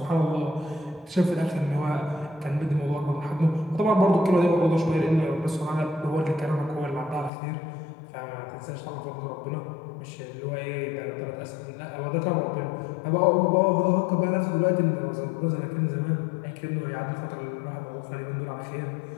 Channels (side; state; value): right; drops out; at 7.3 s